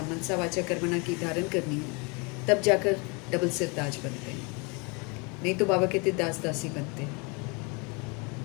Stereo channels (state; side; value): quieter; right; 30.8 dB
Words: मनसा वाचा कर्मणा की धारण करनी है, तब जाकर डबल सिरताज बनते हैं। नहीं तो बाबा कहते दास दासी बनते हैं।